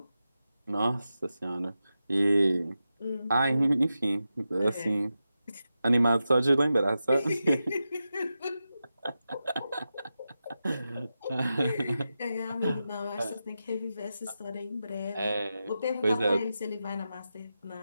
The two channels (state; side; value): inverted; both; correlation -0.90